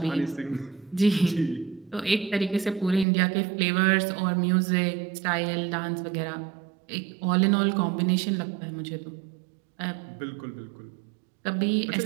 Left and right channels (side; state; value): left; drops out; at 3.1 s